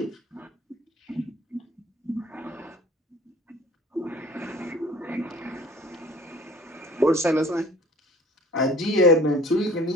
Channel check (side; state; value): both; normal; correlation 0.49